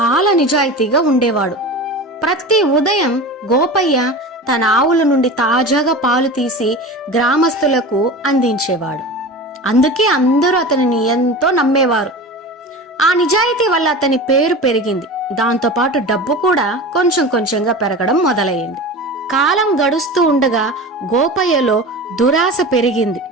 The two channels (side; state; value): both; normal; correlation 0.32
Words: నిజాయితీగా ఉండేవాడు. ప్రతి ఉదయం గోపయ్య తన ఆవుల నుండి తాజాగా పాలు తీసి గ్రామస్తులకు అందించేవాడు. అందుకే అందరూ అతనిని ఎంతో నమ్మేవారు. ఆ నిజాయితీ వల్ల అతని పేరు పెరిగింది. దాంతోపాటు డబ్బు కూడా కొంచెం కొంచెంగా పెరగడం మొదలయ్యింది. కాలం గడుస్తూ ఉండగా గోపయ్యలో దురాశ పెరిగింది.